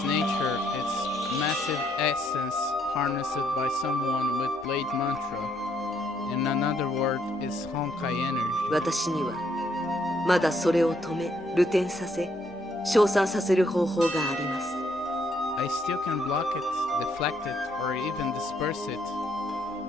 nature, it's massive essence harnessed by someone with blade mantra. In another word, is Honkai energy. 私にはまだそれを止め、流転させ、消散させる方法があります。 I still can block it, deflect it, or even disperse it.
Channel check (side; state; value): both; normal; correlation 0.72